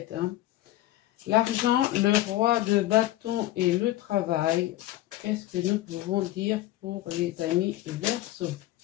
hein. L'argent, le roi de bâton et le travail. Qu'est-ce que nous pouvons dire pour les amis Verseau?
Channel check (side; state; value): right; quieter; 15.4 dB